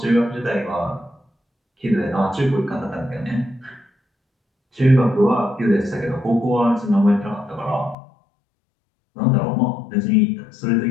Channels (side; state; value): right; drops out; at 8.0 s